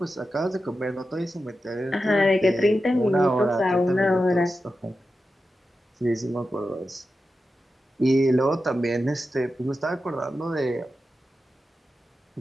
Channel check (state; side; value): normal; both; correlation 0.91